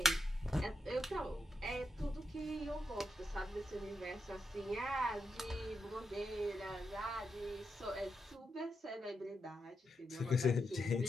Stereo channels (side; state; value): both; normal; correlation 0.85